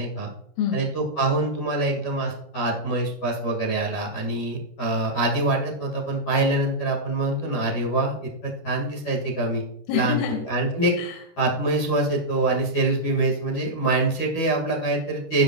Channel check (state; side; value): late; right; 12 ms